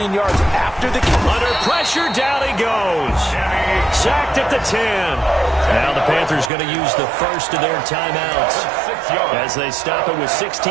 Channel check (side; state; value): left; drops out; at 6.5 s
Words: yards after the catch. Under pressure, down he goes. Sacked at the 10. Now the Panthers going to use the first of their timeouts as they stop it with